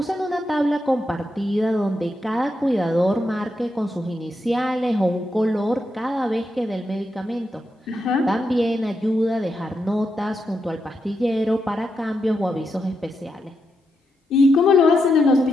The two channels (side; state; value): both; normal; correlation 0.84